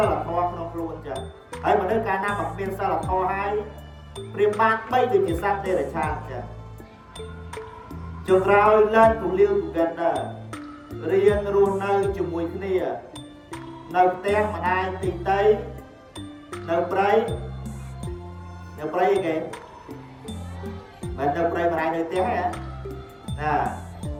ិលធម៌ក្នុងខ្លួនអញ្ចឹងហើយមនុស្សកាលណាមិនមានសិលធម៌ហើយព្រៀបបានបីដូចជាសត្វទេរឆានអញ្ចឹងចុងក្រោយ learn to live together រៀនរស់នៅជាមួយគ្នានៅផ្ទះម្ដាយទីតីនៅព្រៃអីគេមិននៅព្រៃម្ដាយនៅផ្ទះហ៎ណា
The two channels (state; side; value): identical; both; correlation 1.00